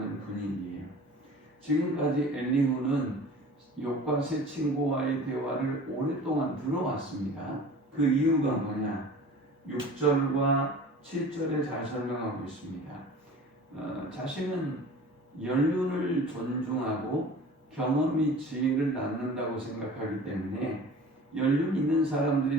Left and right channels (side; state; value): both; normal; correlation 0.42